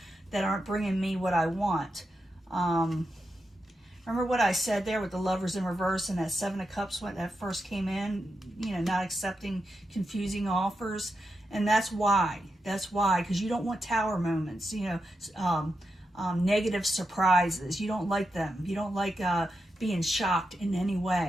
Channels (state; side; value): normal; both; correlation 0.87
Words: that aren't bringing me what I want. Remember what I said there with the Lovers in reverse and that Seven of Cups when that first came in, not accepting confusing offers? And that's why. That's why, because you don't want tower moments, negative surprises. You don't like them. You don't like being shocked in any